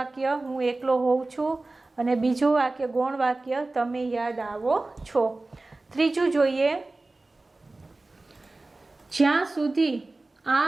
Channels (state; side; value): quieter; left; 3.1 dB